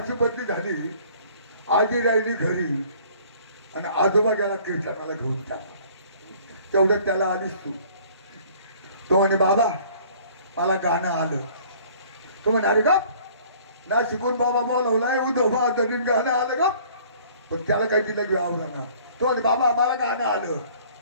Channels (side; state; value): both; inverted; correlation -0.54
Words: बदली झाली आजी राहिली घरी आणि आजोबा गेला कीर्तनाला घेऊन टाकला. तेवढं त्याला आलीस तू तो म्हणे बाबा मला गाणं आलं. तो म्हणे अरे गप ना शिकून बाबा बोलवलाय उद्धव तरी गाणं आलं का पण त्याला काही तिला घ्यावं ना. तो म्हणे बाबा मला गाणं आलं.